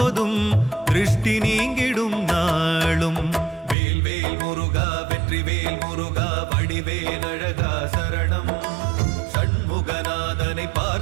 திருஷ்டி நீங்கிடும் நாளும். வேல்வேல் முருகா வெற்றிவேல் முருகா வடிவேல் அழகா சரணம். சண்முகநாதனை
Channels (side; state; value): left; drops out; at 3.8 s